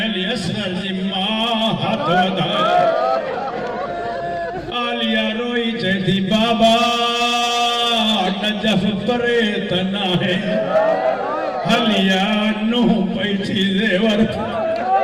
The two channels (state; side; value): identical; both; correlation 1.00